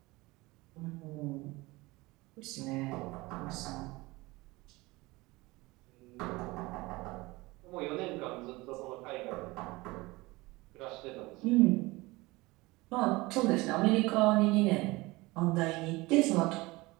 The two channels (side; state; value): left; quieter; 22.0 dB